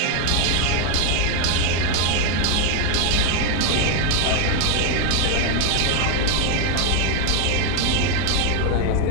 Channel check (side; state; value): both; different; correlation 0.01